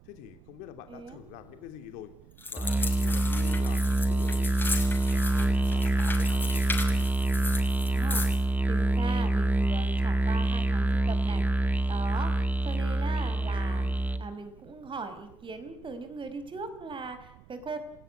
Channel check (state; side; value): noise; right; rumble, 26 dB below the sound